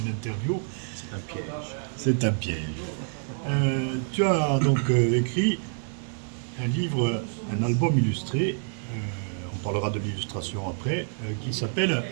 interview. C'est un piège. C'est un piège. Tu as donc écrit un livre, un album illustré, on parlera de l'illustration après, qui s'appelle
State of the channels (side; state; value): left; silent; 60 dB below the other